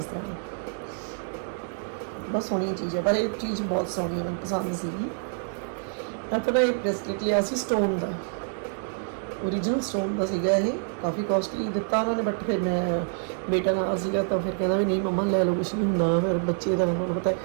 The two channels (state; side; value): silent; left; digital silence